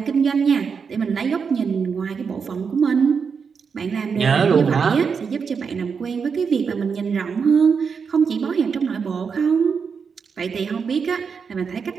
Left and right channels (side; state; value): left; quieter; 5.9 dB